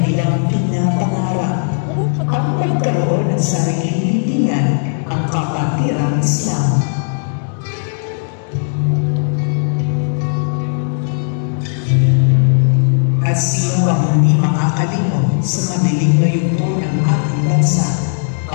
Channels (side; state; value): right; silent; digital silence